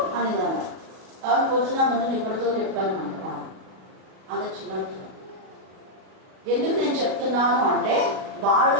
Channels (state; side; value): late; left; 37 ms